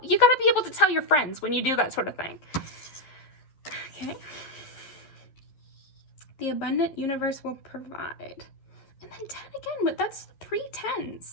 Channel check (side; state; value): right; late; 11 ms